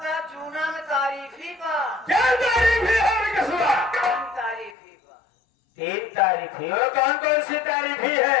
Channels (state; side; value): drops out; right; at 4.8 s